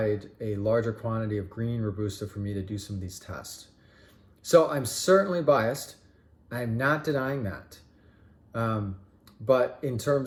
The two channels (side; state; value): both; identical; correlation 1.00